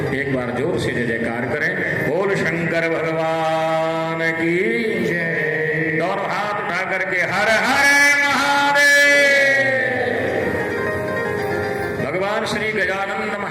एक बार जोर से जय जयकार करें, बोल शंकर भगवान की जय। दोनों हाथ उठा करके हर हर महादेव। भगवान श्री गजानंद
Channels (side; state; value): both; identical; correlation 1.00